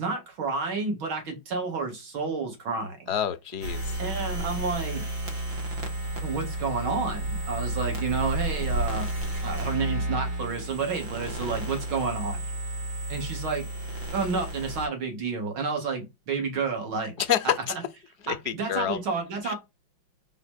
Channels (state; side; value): late; left; 4.8 ms